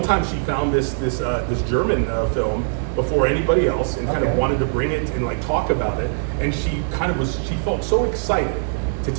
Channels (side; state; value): left; silent; digital silence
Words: time she found this German film before anybody else and kind of wanted to bring it and like talk about it, and she felt so excited to